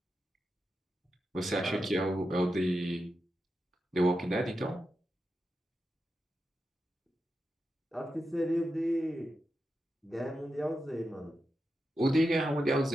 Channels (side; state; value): both; normal; correlation 0.89